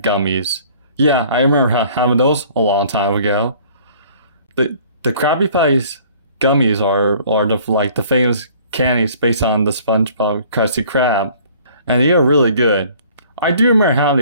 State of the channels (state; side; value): inverted; both; correlation -0.54